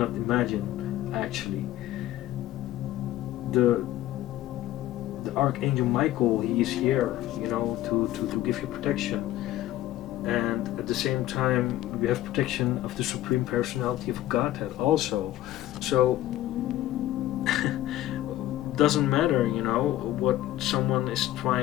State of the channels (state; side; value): quieter; right; 14.3 dB